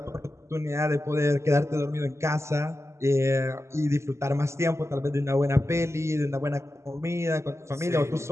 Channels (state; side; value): late; left; 0.13 ms